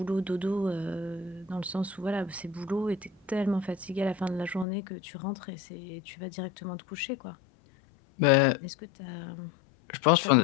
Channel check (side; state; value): right; drops out; at 4.7 s